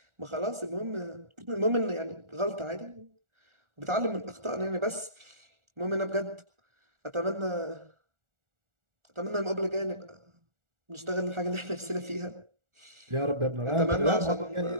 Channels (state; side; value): late; left; 1.4 ms